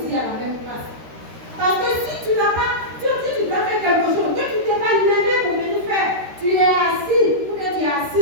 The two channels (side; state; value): left; late; 13 ms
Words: à la même place. Parce que si tu n'as pas, tu dois faire quelque chose, que tu ne t'es pas levé pour venir faire, tu es assis, ou bien tu es